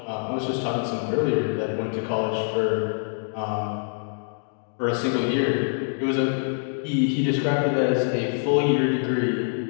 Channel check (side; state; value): right; silent; digital silence